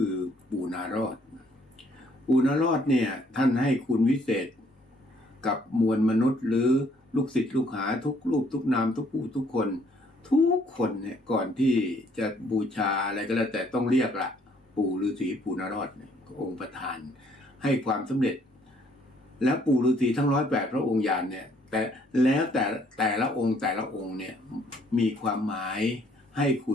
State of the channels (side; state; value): both; normal; correlation 0.64